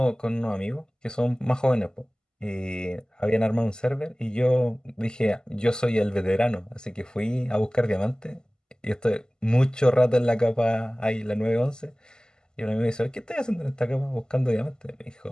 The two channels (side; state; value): both; normal; correlation 0.98